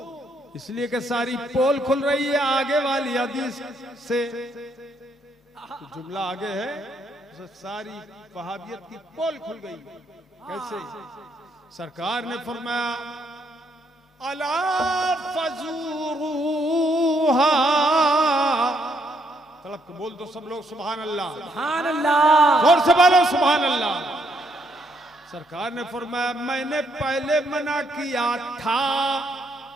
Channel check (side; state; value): both; normal; correlation 0.73